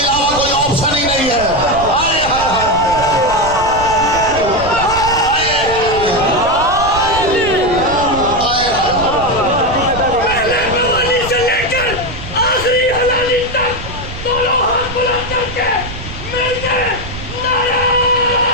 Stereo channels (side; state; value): right; noise; rumble, 10 dB below the sound